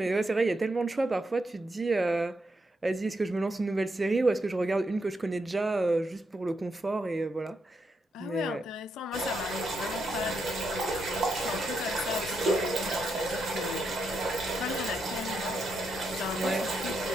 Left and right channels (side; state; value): both; normal; correlation 0.82